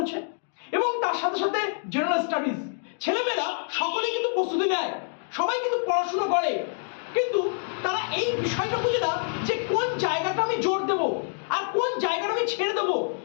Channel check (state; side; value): silent; right; digital silence